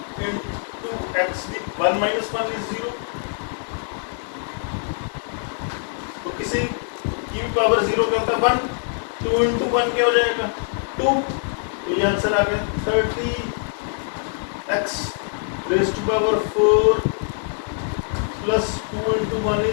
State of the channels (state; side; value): silent; right; 63 dB below the other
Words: इंटू x की 1 - 1 इज 0, तो किसी की पावर 0 क्या होता है 1, 2 इंटू 1 क्या हो जाएगा 2, तो ये आंसर आ गया 30x raise to power 4 plus 2 into 1